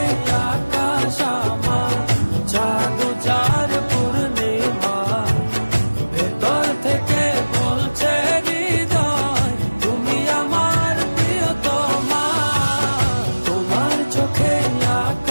আকাশ আমার, চাঁদ যার পূর্ণিমা। ভেতর থেকে বলছে হৃদয় তুমি আমার প্রিয়তমা। তোমার চোখে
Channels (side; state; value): both; inverted; correlation -1.00